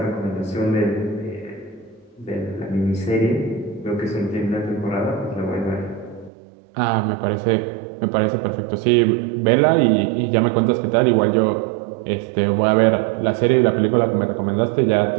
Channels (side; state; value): left; drops out; at 6.3 s